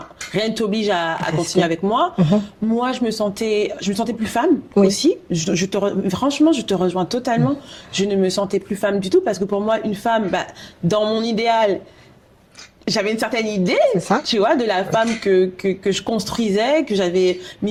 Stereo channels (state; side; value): identical; both; correlation 1.00